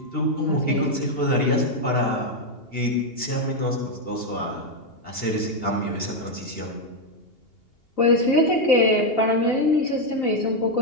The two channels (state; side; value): late; right; 2.8 ms